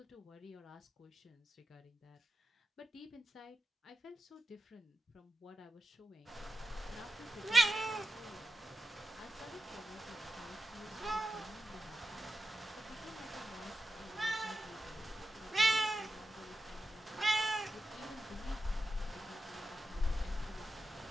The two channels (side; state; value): both; normal; correlation 0.90